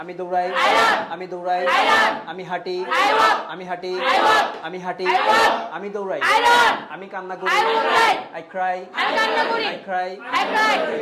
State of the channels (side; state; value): both; identical; correlation 1.00